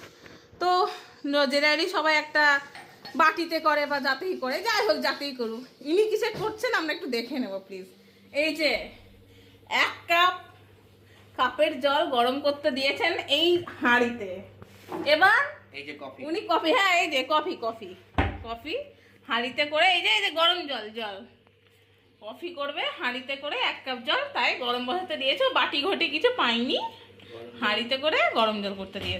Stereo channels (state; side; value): identical; both; correlation 1.00